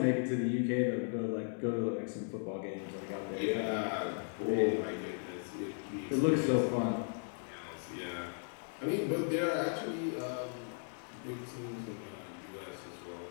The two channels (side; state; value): right; silent; 53 dB below the other